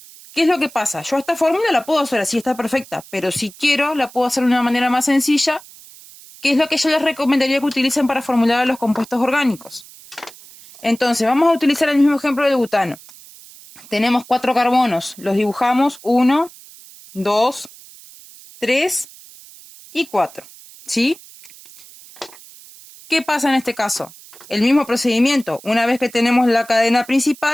¿qué es lo que pasa? Yo esta fórmula la puedo hacer así, está perfecta, pero si quiero la puedo hacer de una manera más sencilla, que es lo que yo les recomendaría que utilicen para formular los compuestos orgánicos. Entonces, vamos a utilizar el mismo ejemplo del butano. Tenemos 4 carbonos, los dibujamos 1, 2, 3 y 4, ¿sí? ¿Qué pasa en este caso? El mismo procedimiento. Una vez que tenemos la cadena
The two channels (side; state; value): right; noise; hiss, 21 dB below the sound